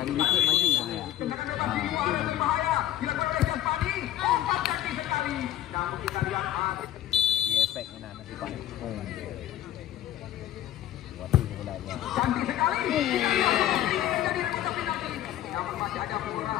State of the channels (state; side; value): quieter; right; 12.7 dB